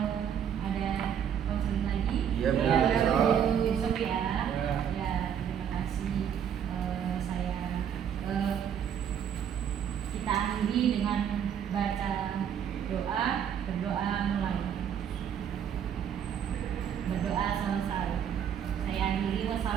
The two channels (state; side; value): quieter; left; 8.6 dB